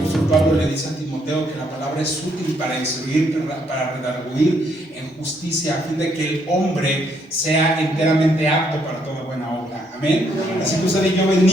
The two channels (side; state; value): both; normal; correlation 0.72